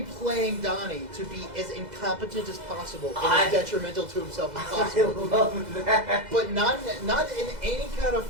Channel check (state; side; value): late; left; 2.0 ms